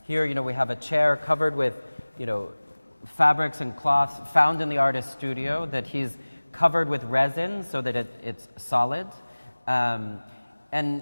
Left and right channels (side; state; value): both; inverted; correlation -1.00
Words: here, we have a chair covered with, fabrics and cloths found in the artist's studio that he's covered with resin so that it's solid. And